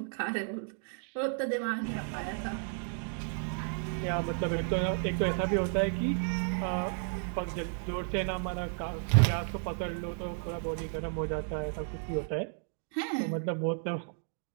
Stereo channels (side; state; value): left; silent; 56 dB below the other